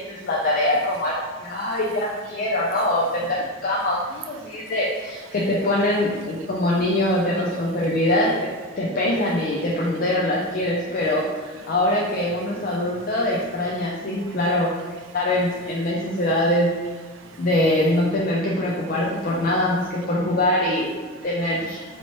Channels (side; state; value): both; normal; correlation 0.18